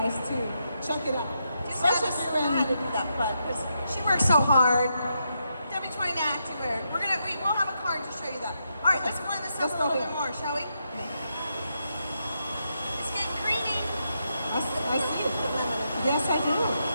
to check it out. Just had Especially to if you're in- to do that fun because she works so hard. W29 Activewear. We'll have a card to show you that. All right, let's blend this up Let's a go little here. bit more, shall we? It's getting creamy. I see it. Put lemon in it. Yes, I do.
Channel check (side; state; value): both; inverted; correlation -0.82